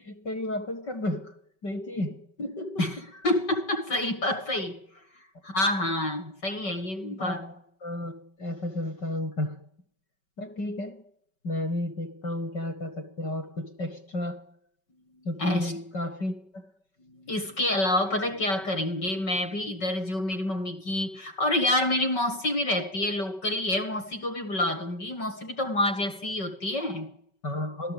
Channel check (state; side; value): late; right; 5.3 ms